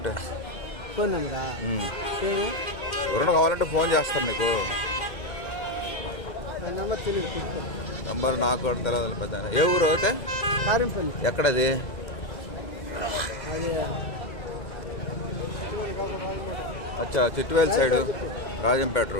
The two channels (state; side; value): late; right; 2.1 ms